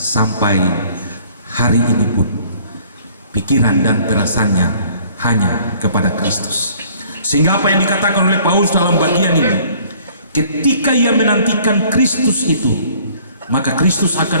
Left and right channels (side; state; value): both; inverted; correlation -0.56